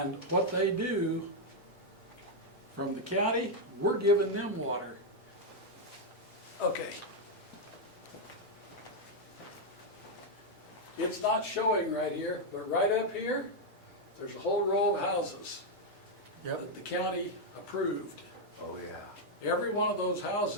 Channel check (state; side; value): normal; both; correlation 0.00